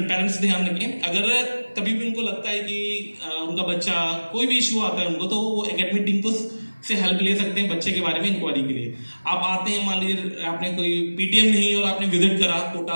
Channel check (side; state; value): both; inverted; correlation -1.00